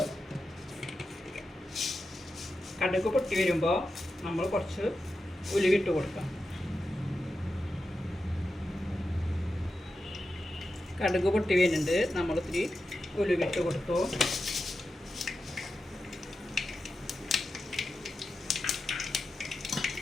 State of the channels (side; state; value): both; normal; correlation 0.90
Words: കടുക് പൊട്ടി വരുമ്പോൾ നമ്മൾ കുറച്ച് ഉലുവിട്ട് കൊടുക്കാം. കടുക് പൊട്ടി വരുന്നുണ്ട്, നമ്മൾ ഇത്തിരി ഉലുവിട്ട് കൊടുത്തു.